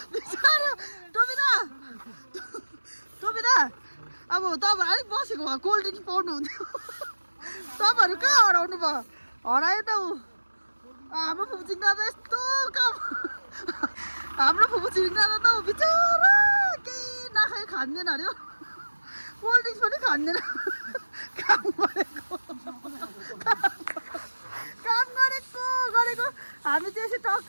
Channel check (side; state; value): both; inverted; correlation -1.00